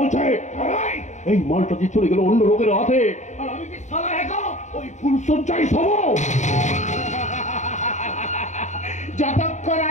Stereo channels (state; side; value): late; right; 0.34 ms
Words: এই মালটা যে চলে গেল অন্য লোকের হাতে, আর আমি কি সালা একা ওই ফুল সজ্জাই সব। যতক্ষণ